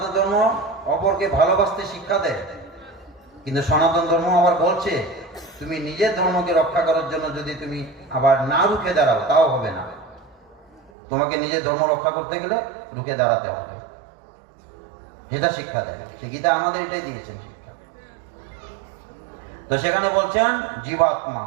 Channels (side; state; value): left; drops out; at 10.9 s